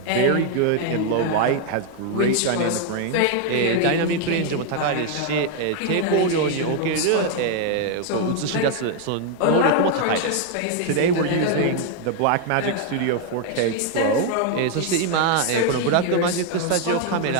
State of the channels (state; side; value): different; both; correlation 0.01